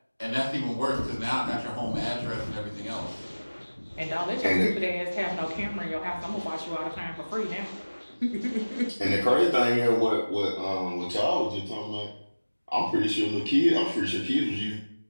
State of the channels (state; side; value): inverted; both; correlation -1.00